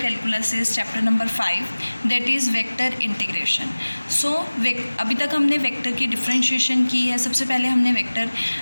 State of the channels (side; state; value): both; inverted; correlation -1.00